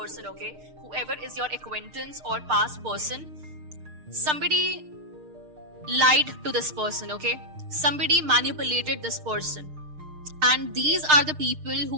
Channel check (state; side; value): late; left; 6.6 ms